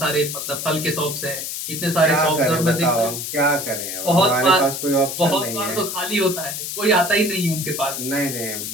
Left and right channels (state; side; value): noise; left; hiss, 5 dB below the sound